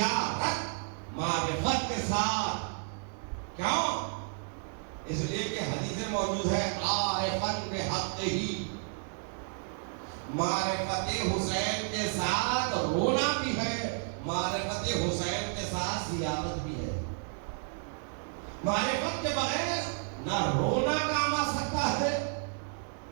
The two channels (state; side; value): silent; left; 57 dB below the other